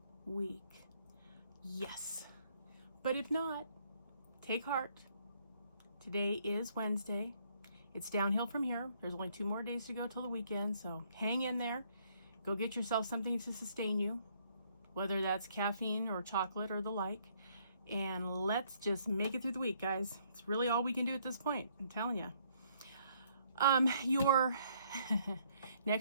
week. Yes, but if not, take heart. Today is Wednesday. It's downhill from here. There's only 2 more days to go till the weekend, so hang in there. Go get yourself something to sustain you, whether that's caffeine or chocolate or the like, and let's just make it through the week, guys. It's really all we can do at this point, I'm telling you. Your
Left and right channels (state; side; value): inverted; both; correlation -0.67